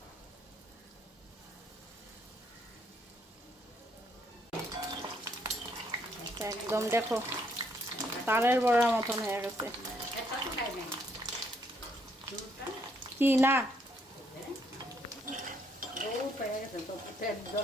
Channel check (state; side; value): normal; both; correlation 0.71